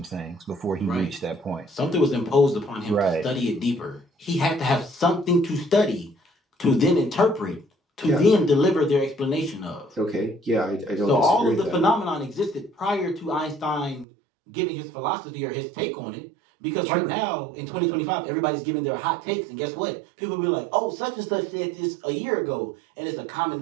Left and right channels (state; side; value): drops out; left; at 14.1 s